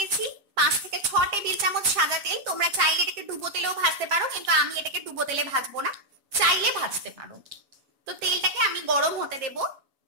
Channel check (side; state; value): left; late; 7.5 ms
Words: 5 থেকে 6 টেবিল চামচ সাদা তেল। তোমরা চাইলে এটাকে ডুবো তেলেও ভাজতে পারো, কিন্তু আমি এটাকে ডুবো তেলে ভাজবো না, চাইলে ভাজতে পারো। তো তেলটাকে আমি গরম হতে দেব।